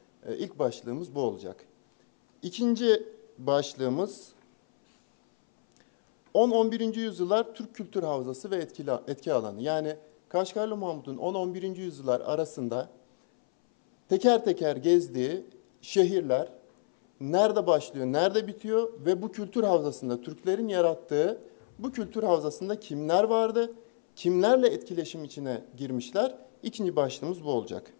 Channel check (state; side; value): silent; right; 58 dB below the other